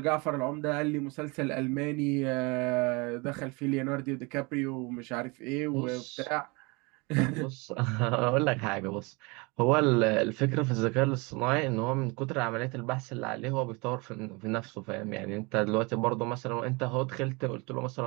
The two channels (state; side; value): quieter; left; 27.8 dB